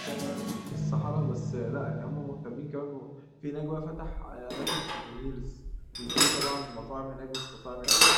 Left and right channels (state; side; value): identical; both; correlation 1.00